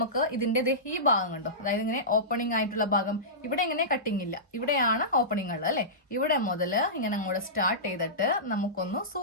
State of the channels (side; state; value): both; normal; correlation -0.18